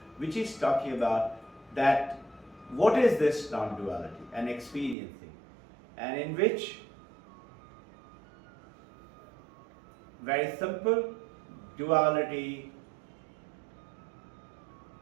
which is talking about that what is this non-duality and experiencing, and in which, very simple, duality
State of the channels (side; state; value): left; drops out; at 5.0 s